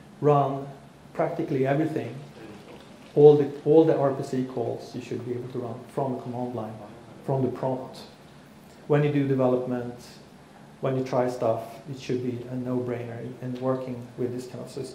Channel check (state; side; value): identical; both; correlation 1.00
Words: run practically everything. All the RPC calls you should be able to run from the command line, from the prompt. When you do development, when you try stuff, it should be a no-brainer in working with this kind of